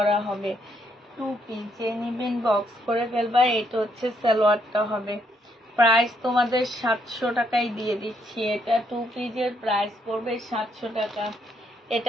হবে। 2 পিস। যে নিবেন বক্স করে ফেলবা। এটা হচ্ছে সালোয়ারটা হবে। প্রাইস তোমাদের 700 টাকায় দিয়ে দিচ্ছি। এটা 2 পিসের প্রাইস পড়বে 700 টাকা।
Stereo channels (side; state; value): both; normal; correlation 0.73